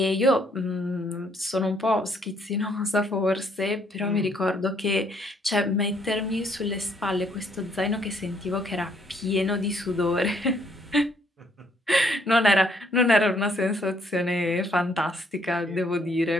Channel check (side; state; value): both; normal; correlation 0.68